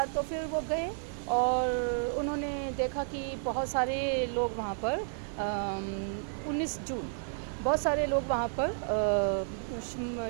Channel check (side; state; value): left; silent; 57 dB below the other